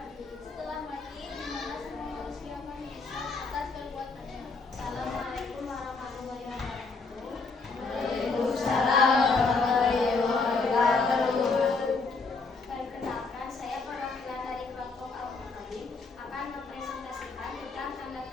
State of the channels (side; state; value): right; quieter; 4.2 dB